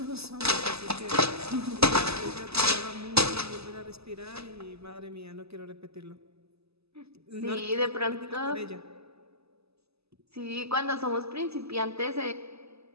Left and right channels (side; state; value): left; late; 0.79 ms